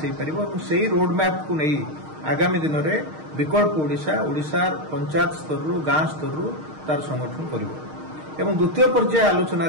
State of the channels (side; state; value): left; late; 6.5 ms